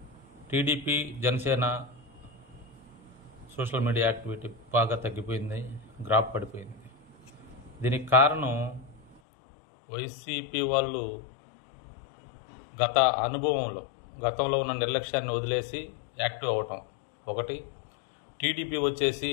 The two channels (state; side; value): drops out; right; at 9.2 s